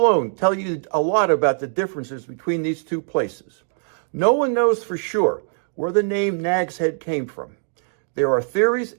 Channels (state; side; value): silent; left; digital silence